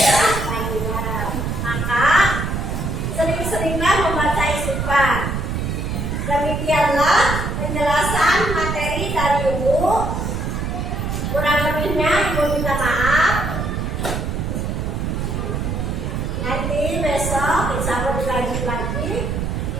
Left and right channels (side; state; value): right; noise; rumble, 2 dB below the sound